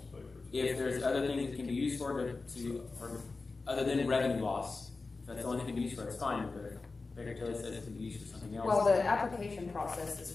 Baker? If there's other things it can be used for or other than revenue loss, if that's the only thing it can be used for, it's fine, but Baker Tilly says it can be used for something else. Well, the application process is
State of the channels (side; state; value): right; quieter; 3.8 dB